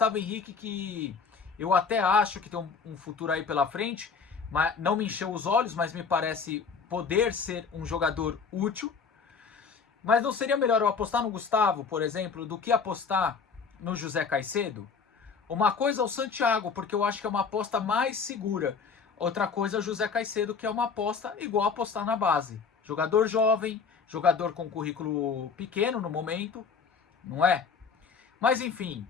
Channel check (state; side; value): quieter; right; 5.6 dB